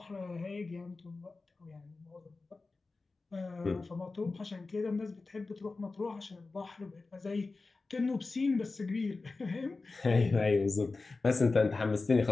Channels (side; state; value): right; quieter; 3.7 dB